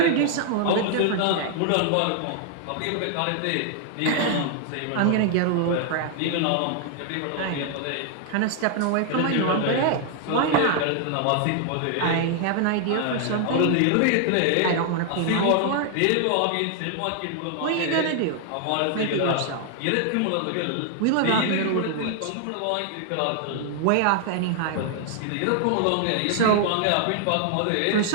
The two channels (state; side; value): different; both; correlation 0.00